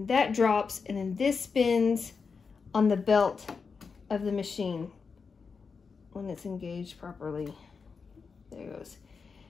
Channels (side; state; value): right; quieter; 5.2 dB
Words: that drops, and then this spins on the belt of the machine when it's engaged properly. There it goes.